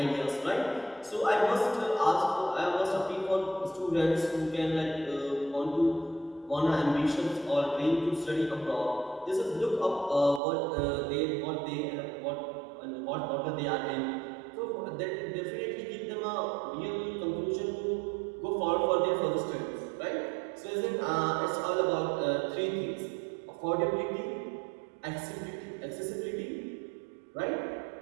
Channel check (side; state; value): left; drops out; at 10.4 s